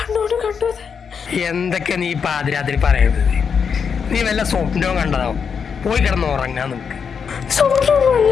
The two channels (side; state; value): right; quieter; 6.4 dB